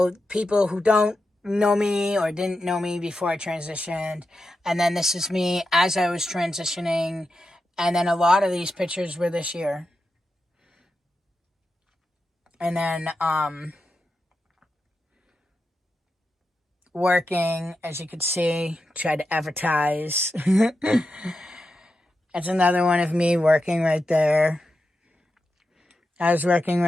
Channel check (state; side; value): normal; both; correlation 0.89